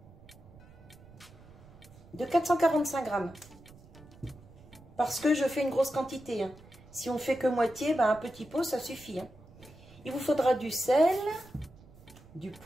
445 grammes. Parce que je fais une grosse quantité. Si on fait que moitié, un petit pot ça suffit. Il vous faudra du sel, du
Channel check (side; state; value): right; noise; rumble, 22 dB below the sound